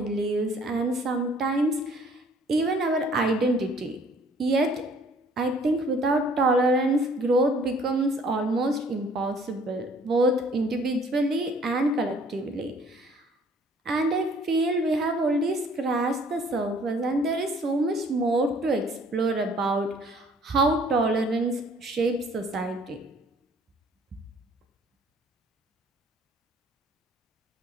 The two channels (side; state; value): both; normal; correlation 0.57